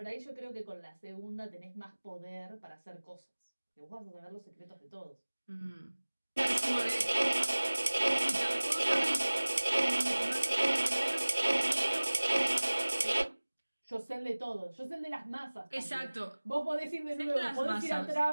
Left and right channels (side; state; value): both; inverted; correlation -1.00